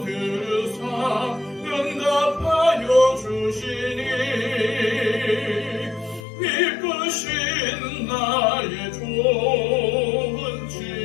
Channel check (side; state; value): right; drops out; at 6.2 s